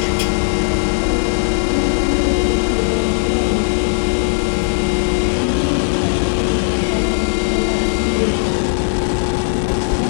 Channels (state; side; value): silent; right; digital silence